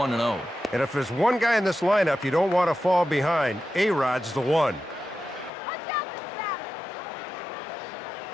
And if there's one guy in this lineup you don't want to fall behind, A-Rod's the one.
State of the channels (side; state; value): right; drops out; at 5.5 s